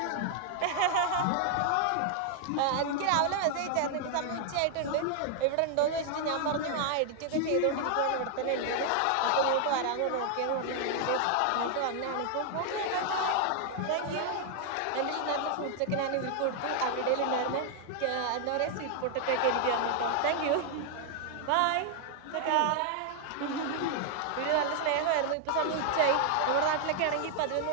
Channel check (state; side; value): different; both; correlation 0.00